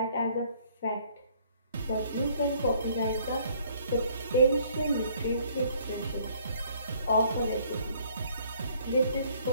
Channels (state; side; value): inverted; both; correlation -0.61